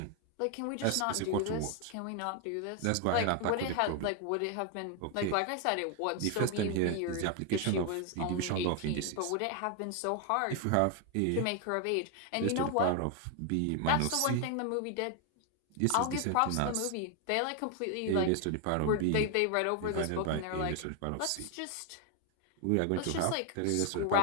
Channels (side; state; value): both; different; correlation 0.01